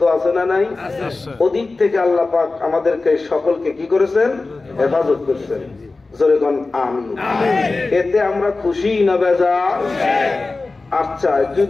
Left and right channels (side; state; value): right; quieter; 3.5 dB